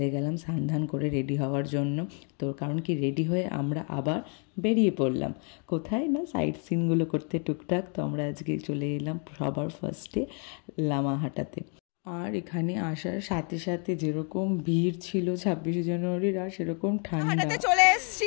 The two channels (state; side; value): quieter; right; 39.6 dB